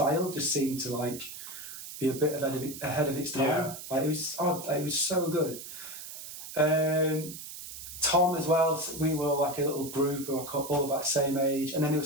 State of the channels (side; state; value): right; noise; hiss, 11 dB below the sound